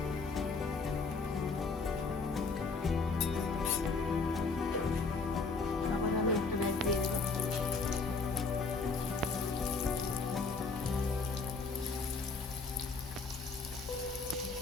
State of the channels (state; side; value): quieter; right; 4.2 dB